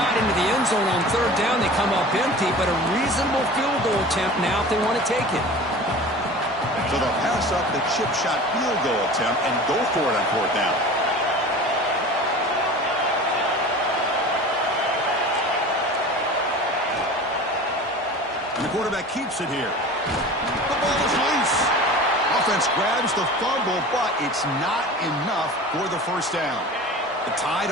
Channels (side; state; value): both; normal; correlation 0.38